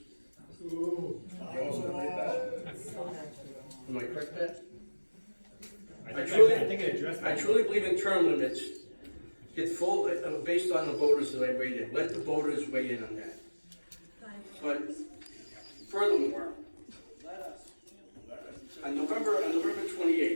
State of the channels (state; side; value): inverted; both; correlation -1.00